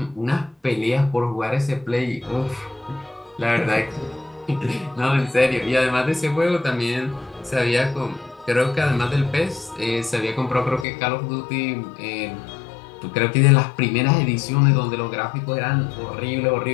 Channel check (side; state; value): right; drops out; at 10.9 s